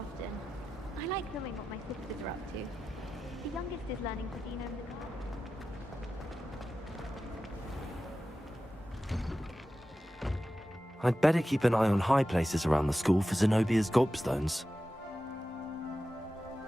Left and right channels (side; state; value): both; normal; correlation 0.93